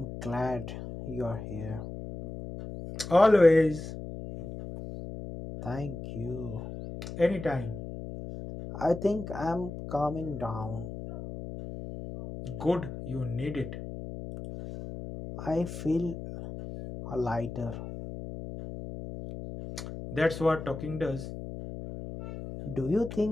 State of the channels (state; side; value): noise; left; hum, 9 dB below the sound